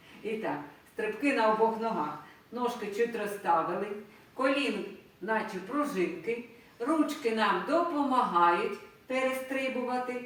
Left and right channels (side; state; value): both; identical; correlation 1.00